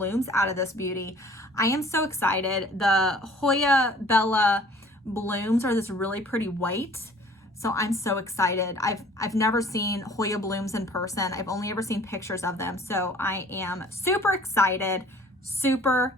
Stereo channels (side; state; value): both; normal; correlation 0.51